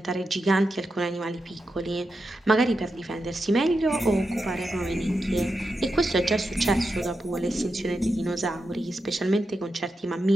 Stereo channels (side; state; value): both; normal; correlation 0.88